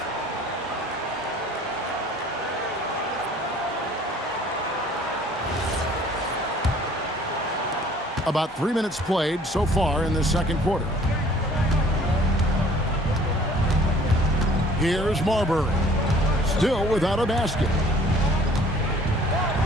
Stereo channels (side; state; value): both; normal; correlation 0.54